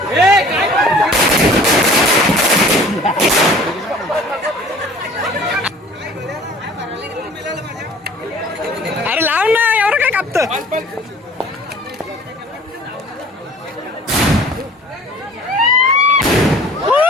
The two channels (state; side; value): normal; both; correlation 0.48